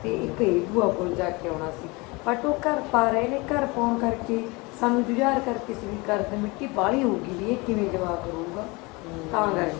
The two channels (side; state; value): right; quieter; 25.6 dB